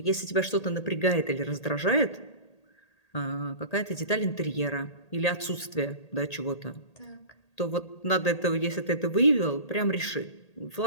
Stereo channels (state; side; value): late; right; 1.8 ms